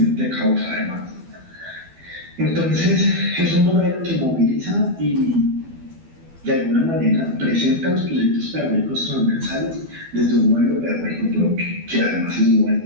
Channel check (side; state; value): left; late; 12 ms